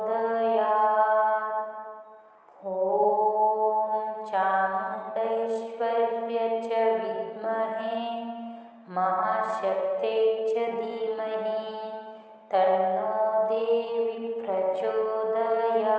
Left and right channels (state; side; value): identical; both; correlation 1.00